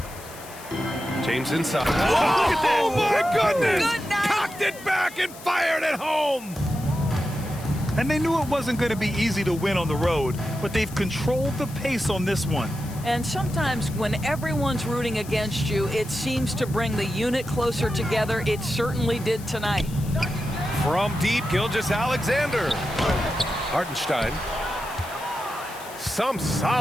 James inside. Oh my goodness! Good night. Cocked it back and fired it home! And they knew it wasn't going to be easy to win on the road, but they've controlled the pace on this one. And sometimes when everyone's rooting against you, it seems to bring the unit closer together. It certainly did tonight. From deep, Gilgeous-Alexander. Hartenstein. Some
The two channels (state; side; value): noise; left; hiss, 17 dB below the sound